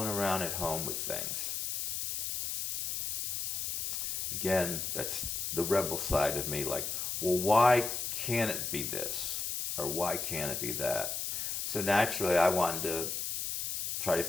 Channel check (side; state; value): left; noise; hiss, 2 dB below the sound